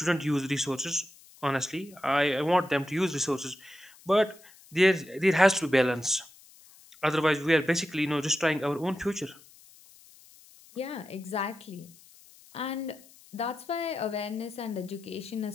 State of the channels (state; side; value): noise; left; hiss, 24 dB below the sound